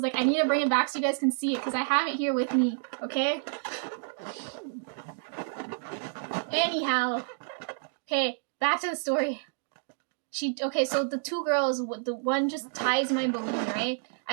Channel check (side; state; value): left; silent; digital silence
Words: like, I need to bring it back so you guys can see it because I have it here with me. Okay. Anyhow, okay, back to the story. So the two girls, the one just ties my balloon, right?